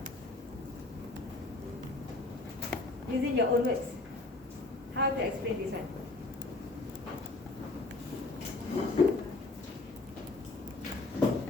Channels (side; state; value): right; quieter; 3.2 dB